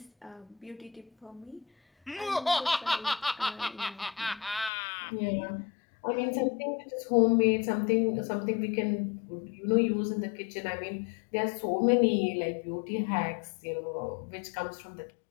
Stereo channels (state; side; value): drops out; right; at 4.7 s